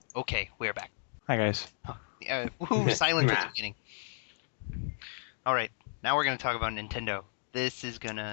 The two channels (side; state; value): right; silent; digital silence